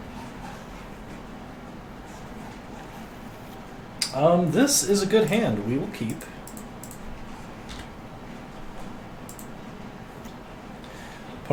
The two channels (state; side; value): identical; both; correlation 1.00